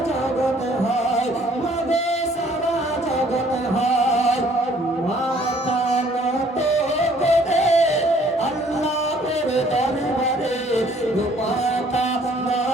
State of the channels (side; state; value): both; normal; correlation 0.60